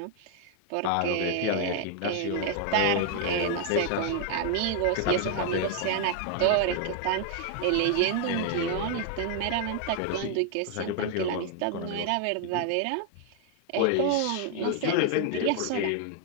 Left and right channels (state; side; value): different; both; correlation 0.00